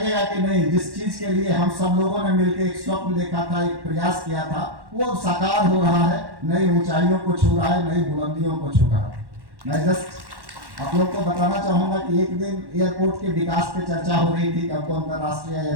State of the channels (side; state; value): left; late; 1.1 ms